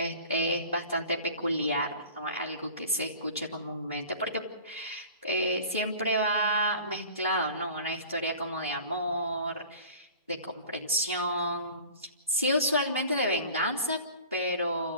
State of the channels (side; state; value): both; inverted; correlation -0.43